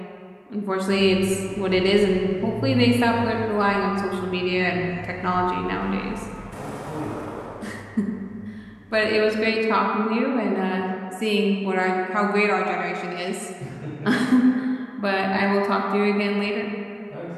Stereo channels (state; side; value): identical; both; correlation 1.00